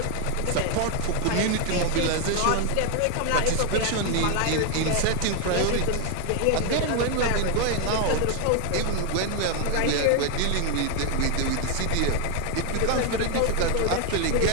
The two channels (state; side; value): different; both; correlation 0.01